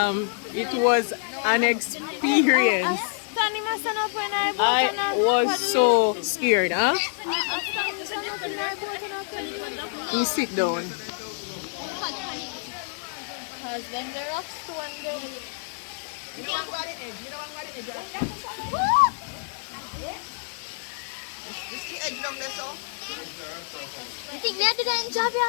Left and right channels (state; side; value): silent; right; digital silence